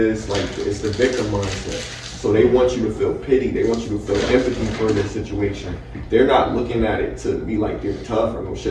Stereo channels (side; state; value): both; identical; correlation 1.00